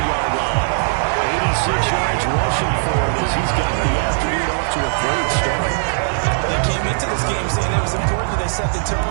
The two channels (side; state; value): left; silent; digital silence